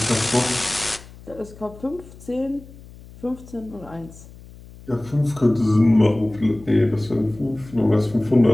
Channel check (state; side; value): noise; left; hum, 20 dB below the sound